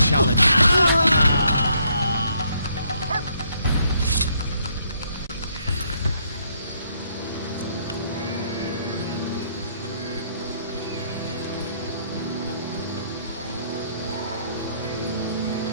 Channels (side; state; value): both; inverted; correlation -0.70